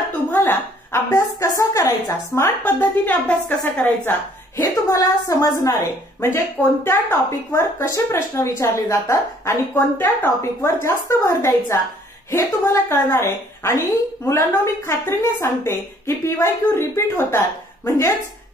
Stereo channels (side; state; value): both; normal; correlation 0.60